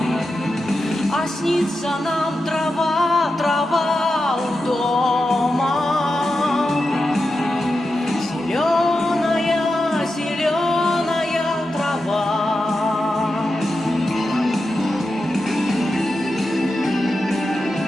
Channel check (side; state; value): both; normal; correlation 0.90